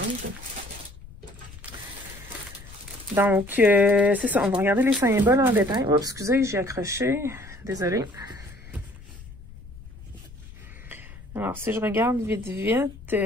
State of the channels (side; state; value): left; noise; rumble, 17 dB below the sound